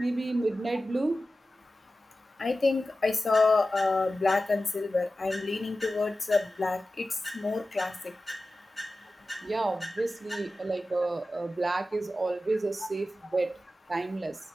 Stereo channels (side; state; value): both; normal; correlation 0.94